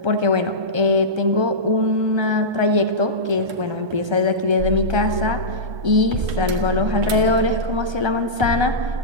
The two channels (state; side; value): late; left; 1.3 ms